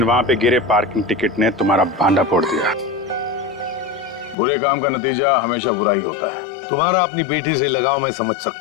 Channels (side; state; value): right; drops out; at 4.4 s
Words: वहां पे गिरे पार्किंग टिकट ने तुम्हारा भांडा फोड़ दिया। बुरे काम का नतीजा हमेशा बुरा ही होता है। तुम्हारा अपनी बेटी से लगाव मैं समझ